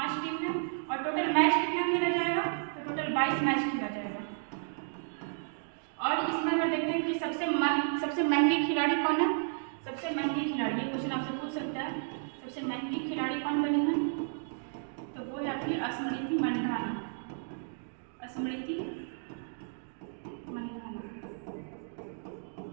टीम है। और टोटल मैच कितना खेला जाएगा? तो टोटल 22 मैच खेला जाएगा। और इसमें अगर देखते हैं कि सबसे महंगी खिलाड़ी कौन है? सबसे महंगी खिलाड़ी, ये क्वेश्चन आपसे पूछ सकता है, सबसे महंगी खिलाड़ी कौन बनी है? तो वो है आपकी स्मृति मंधाना, स्मृति मंधाना,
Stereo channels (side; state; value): left; silent; digital silence